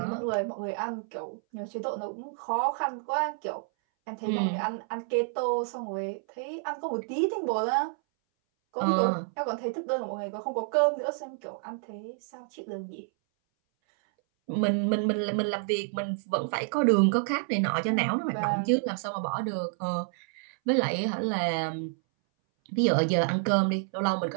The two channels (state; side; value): silent; left; 58 dB below the other